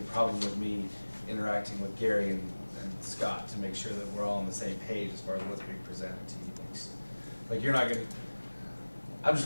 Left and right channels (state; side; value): inverted; both; correlation -1.00